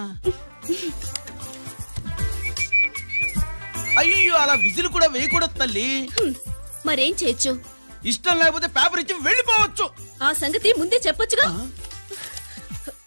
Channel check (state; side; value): inverted; both; correlation -1.00